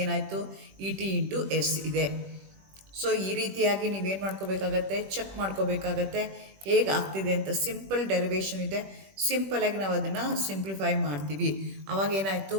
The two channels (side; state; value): left; late; 21 ms